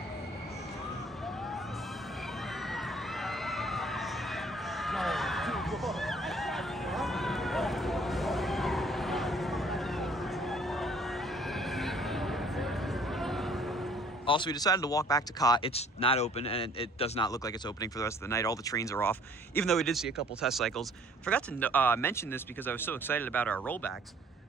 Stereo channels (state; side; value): normal; both; correlation 0.57